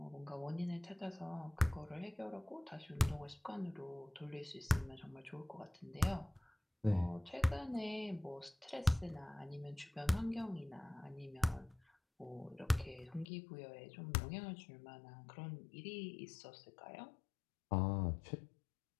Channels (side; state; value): right; drops out; at 13.2 s